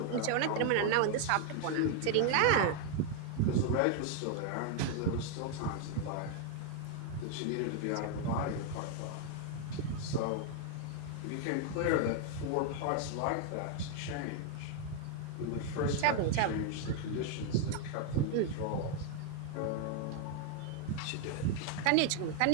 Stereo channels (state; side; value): different; both; correlation 0.00